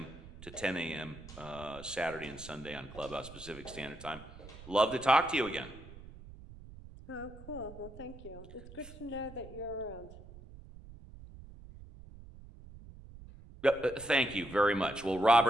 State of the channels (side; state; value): right; noise; rumble, 17 dB below the sound